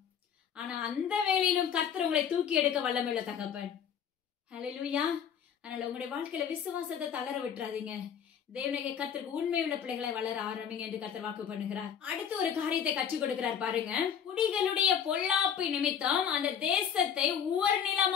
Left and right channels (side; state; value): right; quieter; 8.0 dB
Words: ஆனா அந்த வேளையிலும் கர்த்தர் உங்களை தூக்கி எடுக்க வல்லமையுள்ள தகப்பன். ஹல்லேலூயா. அதனால உங்களுடைய வாழ்க்கையில விசுவாசத்தை தளர விட்டுறாதீங்க. தேவனாகிய கர்த்தருக்கு உண்மையுள்ள பிள்ளைகளை வளர ஆரம்பிங்க என்று கர்த்தர் வாக்கு பண்ணுகிறார். அடுத்து ஒரு காரியத்தை கற்றுக் கொடுக்கிறார் பாருங்க. குடிகளுடைய பொல்லாப்பு நிமித்தம் அந்த தேசத்தை உவர்